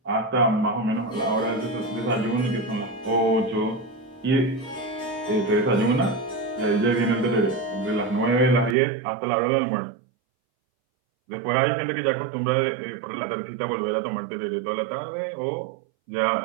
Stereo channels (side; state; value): left; drops out; at 8.8 s